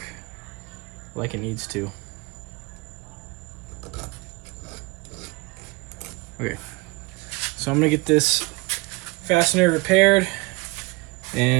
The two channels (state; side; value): quieter; left; 25.3 dB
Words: like it needs to. Okay, so I'm gonna get this fastener repaired